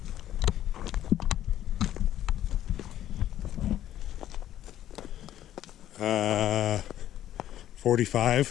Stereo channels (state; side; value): quieter; right; 12.1 dB